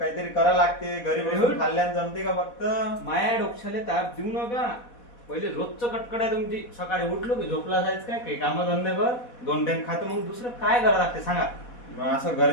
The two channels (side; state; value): right; late; 4.1 ms